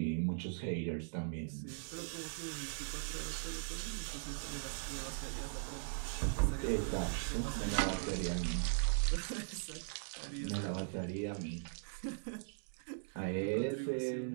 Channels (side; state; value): left; silent; digital silence